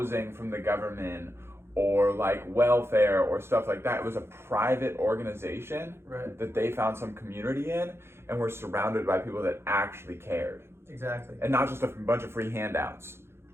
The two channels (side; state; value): left; late; 0.12 ms